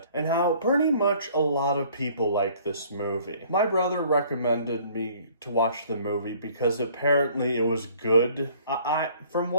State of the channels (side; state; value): both; inverted; correlation -0.56